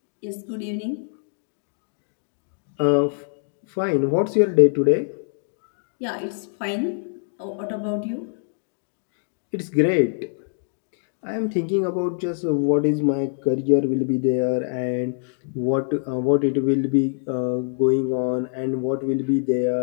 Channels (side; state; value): right; silent; digital silence